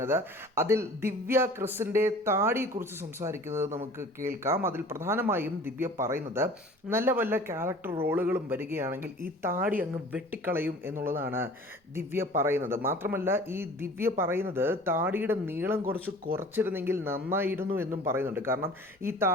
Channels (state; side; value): normal; both; correlation 0.45